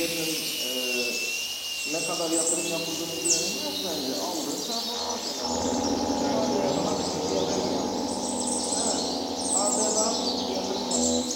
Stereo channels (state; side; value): identical; both; correlation 1.00